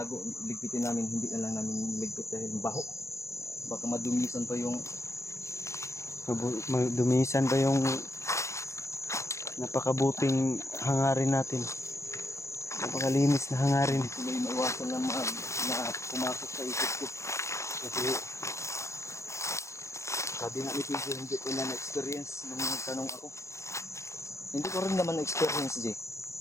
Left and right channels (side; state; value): right; late; 0.14 ms